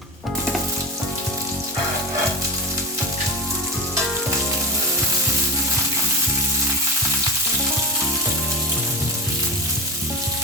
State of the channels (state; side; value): normal; both; correlation 0.22